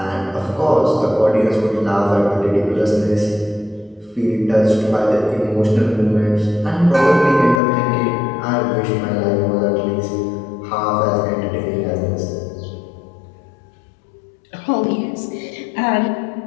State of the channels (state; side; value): drops out; right; at 7.6 s